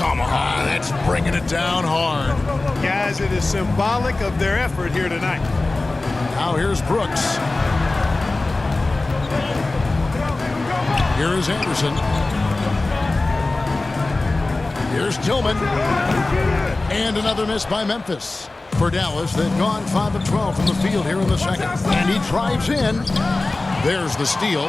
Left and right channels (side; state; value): right; quieter; 3.2 dB